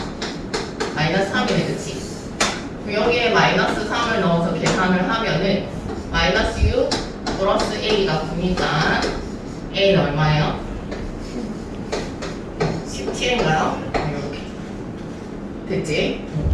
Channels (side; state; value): both; identical; correlation 1.00